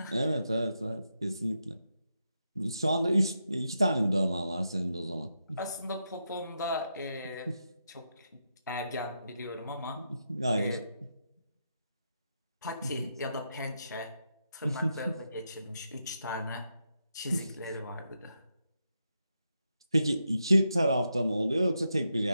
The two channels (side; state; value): both; inverted; correlation -0.84